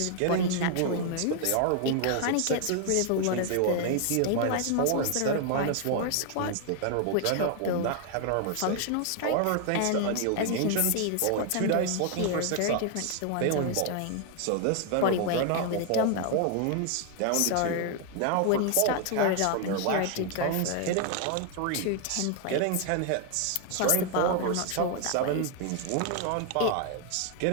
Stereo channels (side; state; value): both; different; correlation 0.00